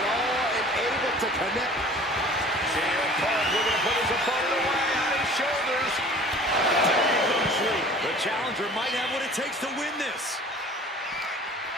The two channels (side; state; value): both; normal; correlation 0.46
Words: all and able to connect. CM Punk looking to put his opponent away on his shoulders. Taking them sleep. The challenger might have what it takes to win this.